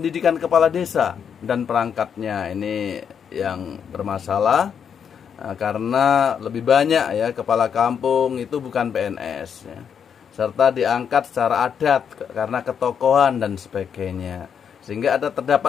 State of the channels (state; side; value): quieter; right; 7.5 dB